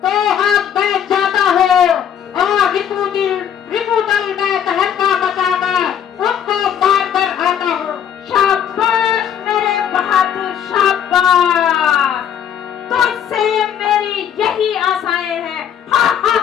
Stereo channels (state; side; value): quieter; right; 9.0 dB